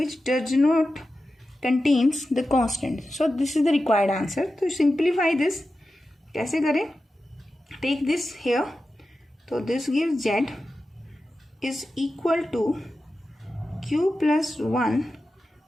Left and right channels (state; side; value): normal; both; correlation 0.92